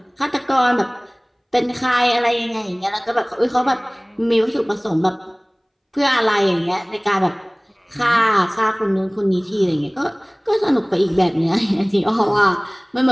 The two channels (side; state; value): both; identical; correlation 1.00